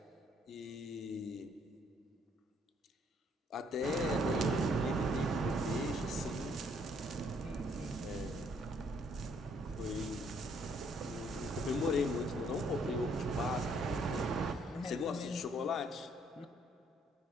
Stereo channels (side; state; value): both; normal; correlation 0.66